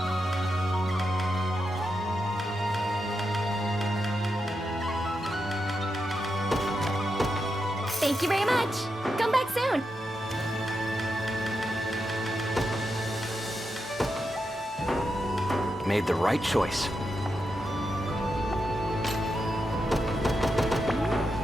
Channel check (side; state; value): both; normal; correlation 0.86